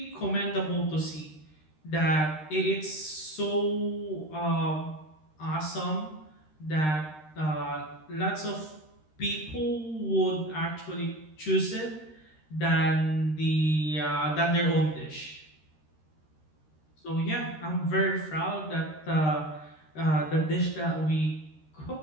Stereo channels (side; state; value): right; late; 13 ms